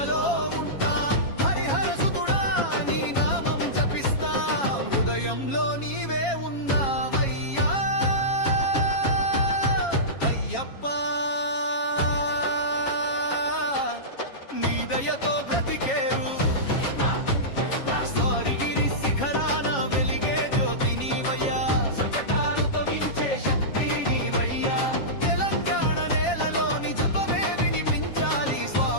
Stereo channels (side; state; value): right; late; 7.3 ms